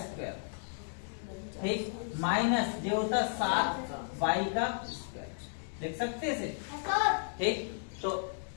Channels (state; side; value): silent; right; digital silence